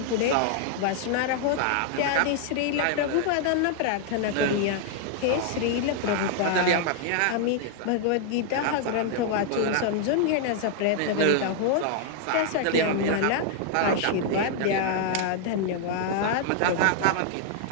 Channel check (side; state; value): both; different; correlation 0.00